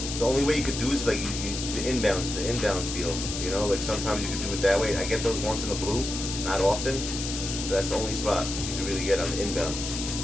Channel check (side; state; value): left; noise; hiss, 5 dB below the sound